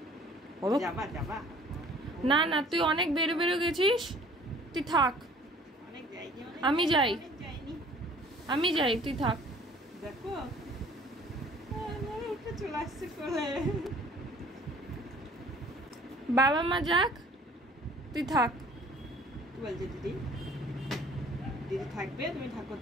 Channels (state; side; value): normal; both; correlation 0.52